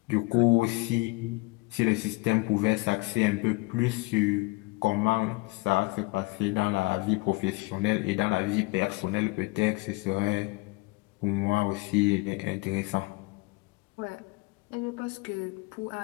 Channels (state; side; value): quieter; right; 24.9 dB